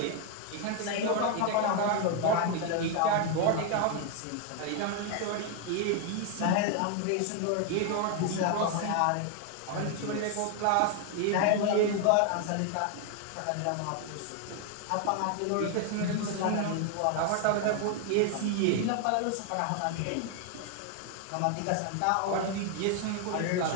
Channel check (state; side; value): different; both; correlation 0.01